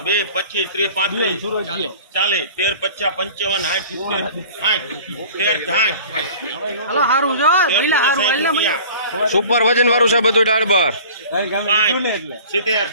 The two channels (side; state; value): both; inverted; correlation -0.44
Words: 25 30 35 40 13 50 55 સુપર વજન વાળું છે બધું દાળ બાર 70